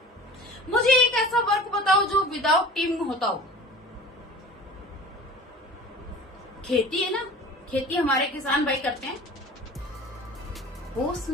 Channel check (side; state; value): both; normal; correlation 0.41